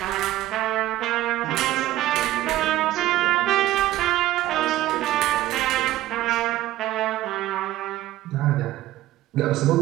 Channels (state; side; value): quieter; left; 14.9 dB